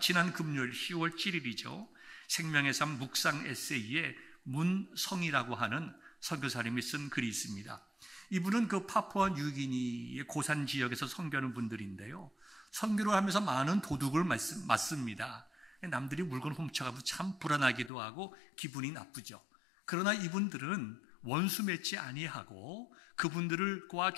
금요일 10월 7일이죠. 생명의 삶 묵상 에세이에 문성이라고 하는 선교사님이 쓴 글이 있습니다. 이분은 그 파푸아 뉴기니의 고산 지역에서 선교하는 분들인데요, 선교를 하면서 많은 도둑을 맞습니다. 남들이 물건 훔쳐가면 참 불안하기도 하고 기분이 나쁘죠. 그러나 이분들은 원수 맺지 아니하고 그분들과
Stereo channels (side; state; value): right; drops out; at 17.9 s